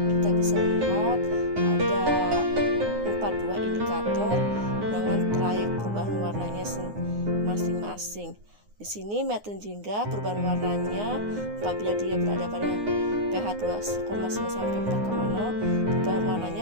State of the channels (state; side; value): late; left; 9.6 ms